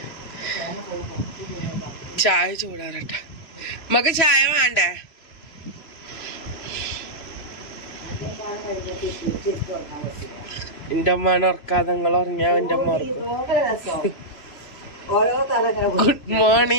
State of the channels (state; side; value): late; right; 2.8 ms